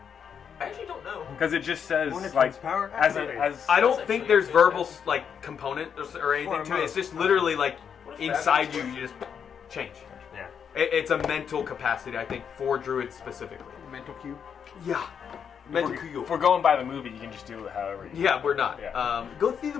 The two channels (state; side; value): quieter; right; 7.4 dB